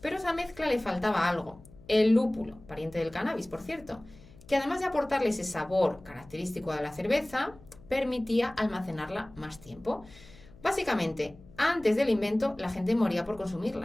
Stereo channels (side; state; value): left; noise; hum, 22 dB below the sound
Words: pero a esa mezcla le faltaba algo, el lúpulo, pariente del cannabis, por cierto, que además de aportarle ese sabor característico de la cerveza, permitía almacenarla más tiempo. Básicamente, antes del invento, la gente moría por